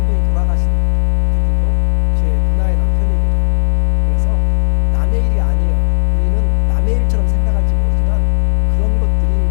분이 돌아가신 그분도 제 누나의 남편입니다. 그래서 남의 일이 아니에요. 우리는 남의 일처럼 생각할지 모르지만 그런 것들이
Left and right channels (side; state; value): right; silent; digital silence